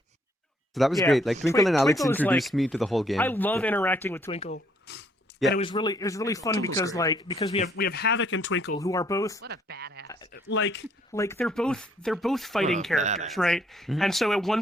So that was Yeah, great. Like Twinkle and Alex Twinkle is, introduced like- me to the whole game. I love interacting with Twinkle. Yeah. And it was really fun because we have Havoc and Twinkle who are both What a badass. like they're both fighting What a characters, badass. right? Mhm. And so at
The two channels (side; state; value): both; normal; correlation 0.67